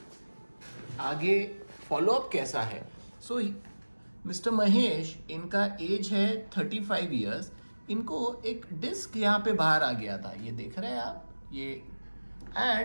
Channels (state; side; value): inverted; both; correlation -1.00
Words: आगे फॉलोअप कैसा है। सो मिस्टर महेश, इनका एज है 35 ईयर्स। इनको एक डिस्क यहाँ पे बाहर आ गया था, ये देख रहे हैं आप, ये,